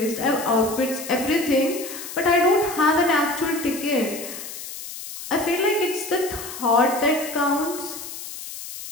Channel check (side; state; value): left; noise; hiss, 10 dB below the sound